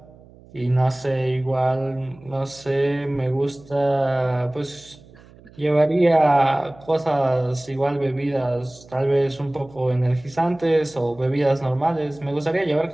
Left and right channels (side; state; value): right; noise; hum, 24 dB below the sound